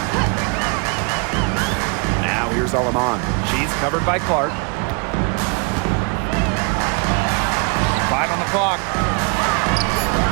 Now here's Alaman. She's covered by Clark. 5 on the clock.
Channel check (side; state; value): left; quieter; 34.3 dB